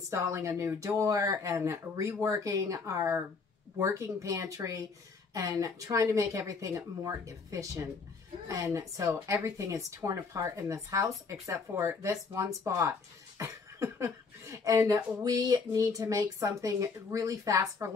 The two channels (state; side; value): quieter; right; 4.7 dB